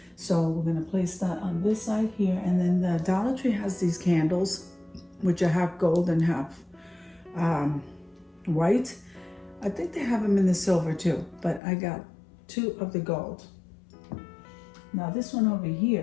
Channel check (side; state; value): right; drops out; at 11.6 s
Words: So we're gonna place that on this side here. And then the Dollar Tree has these candles, which are half gold and half white. I think they have them in the silver too, but I got 2 of the gold. Now this one over